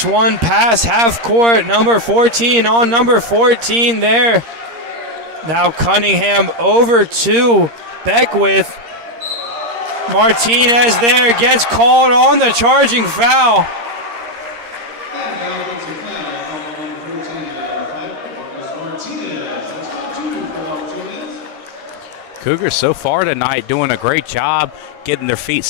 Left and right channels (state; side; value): late; left; 13 ms